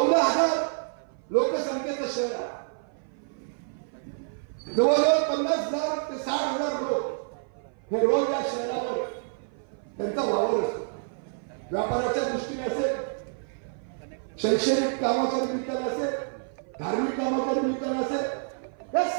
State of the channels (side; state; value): left; silent; 55 dB below the other